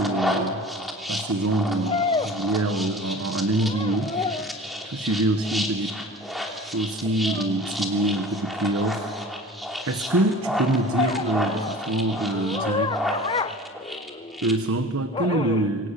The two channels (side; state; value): both; normal; correlation 0.40